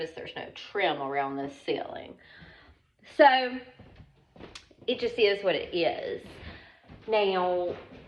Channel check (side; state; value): both; identical; correlation 1.00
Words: there's no trim around this ceiling. So it just is what it is. Now,